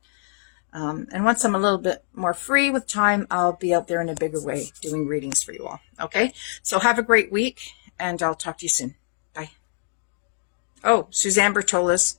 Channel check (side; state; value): right; silent; digital silence